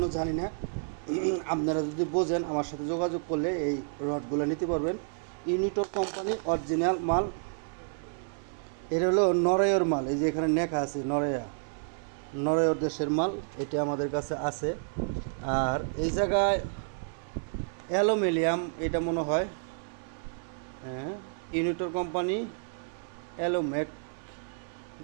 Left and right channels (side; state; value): left; silent; 55 dB below the other